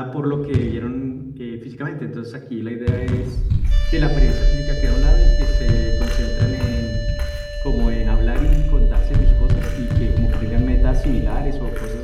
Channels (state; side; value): identical; both; correlation 1.00